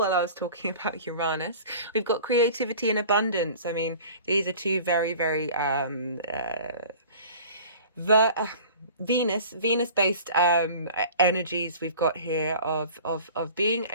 I was talking about Uranus. We've got creativity and abundance. I mean, these are 2 very, very Venus-based energies we've got here of being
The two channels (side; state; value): both; inverted; correlation -0.43